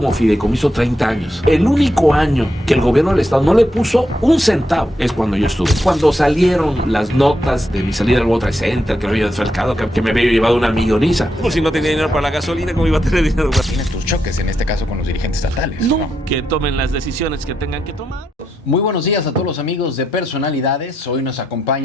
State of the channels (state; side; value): normal; both; correlation 0.82